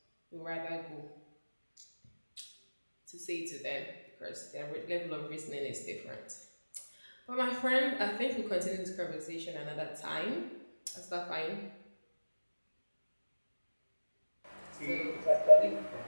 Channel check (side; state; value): both; inverted; correlation -1.00